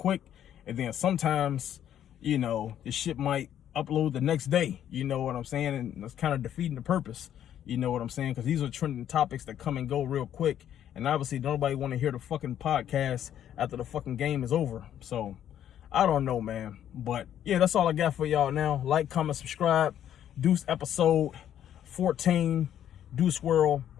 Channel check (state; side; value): quieter; right; 10.5 dB